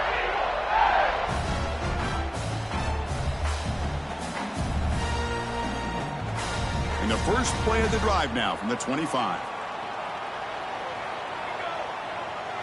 The first play of the drive now from the 25.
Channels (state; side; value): identical; both; correlation 1.00